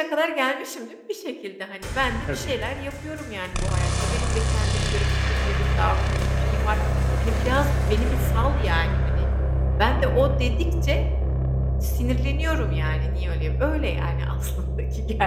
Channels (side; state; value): both; identical; correlation 1.00